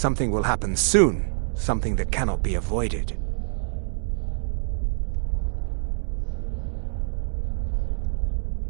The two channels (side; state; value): left; silent; digital silence